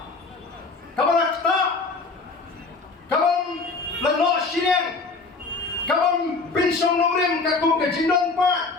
kabalak ta kabam lano shireng kabam pinsong nongrim kakum ke jindon pa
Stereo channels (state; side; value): quieter; right; 4.0 dB